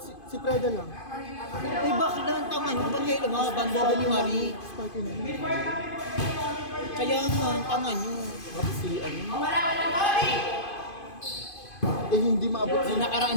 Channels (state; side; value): late; right; 2.5 ms